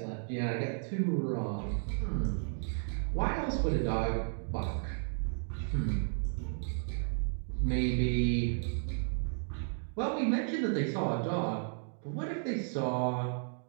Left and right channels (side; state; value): left; silent; 55 dB below the other